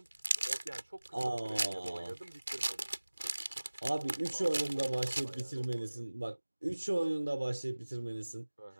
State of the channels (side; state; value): both; inverted; correlation -1.00